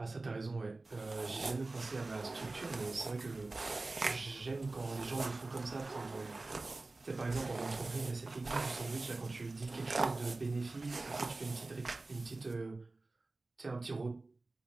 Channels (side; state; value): left; quieter; 3.3 dB